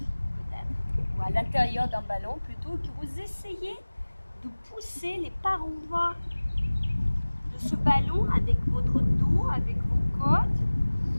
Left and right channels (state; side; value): inverted; both; correlation -1.00